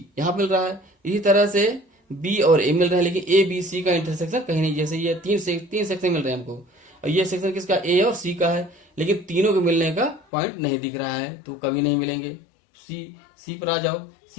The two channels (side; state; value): right; drops out; at 10.2 s